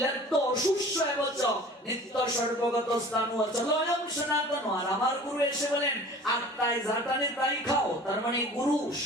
অশুষ্য এবচ নিত্য সর্বগত স্থানু অচল অয়ম সনাতন। আর আমার গুরু এসে বলেন আত্মায় যা টানে তাই খাও। তার মানে গুরু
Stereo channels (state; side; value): normal; both; correlation 0.44